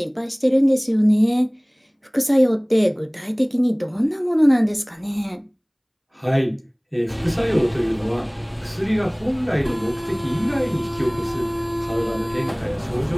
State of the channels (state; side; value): identical; both; correlation 1.00